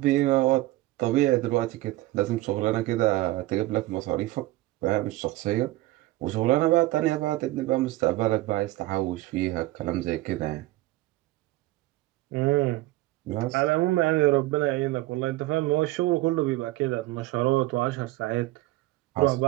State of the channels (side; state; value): left; quieter; 18.1 dB